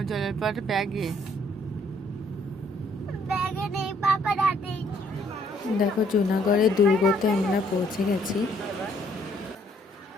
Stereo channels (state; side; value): normal; both; correlation 0.66